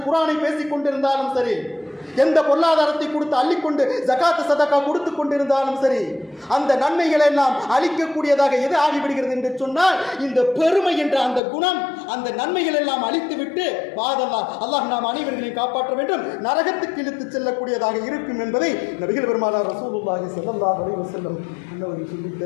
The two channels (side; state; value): right; drops out; at 11.4 s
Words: குர்ஆனை பேசிக் கொண்டிருந்தாலும் சரி, எந்த பொருளாதாரத்தை கொடுத்து அள்ளிக்கொண்டு ஜகாத் சதகா கொடுத்து கொண்டிருந்தாலும் சரி, அந்த நன்மைகளை எல்லாம் அளிக்கக்கூடியதாக எது ஆகிவிடுகிறது என்று சொன்னால் இந்த பெருமை என்ற அந்த குணம், அந்த நன்மைகள் எல்லாம் அழித்துவிட்டு அல்லாஹ் நாம் அனைவர்களையும் காப்பாற்ற வேண்டும், நரகத்துக்கு இழுத்து செல்லக்கூடியதாக இருக்கும் என்பதை நபிகள் பெருமானார் ரசூலுல்லாஹி ஸல்லல்லாஹு அலைஹி வஸல்லம் அவர்கள் சொல்லித்